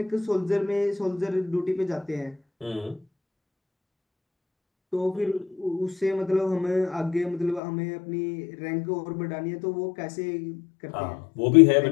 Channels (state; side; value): drops out; right; at 7.6 s